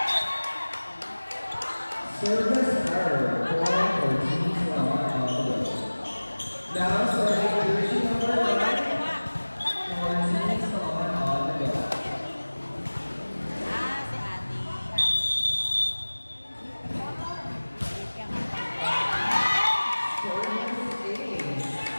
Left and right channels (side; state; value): both; inverted; correlation -1.00